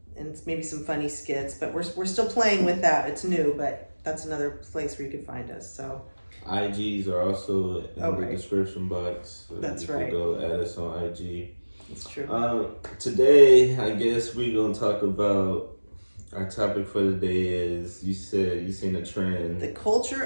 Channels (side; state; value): both; inverted; correlation -1.00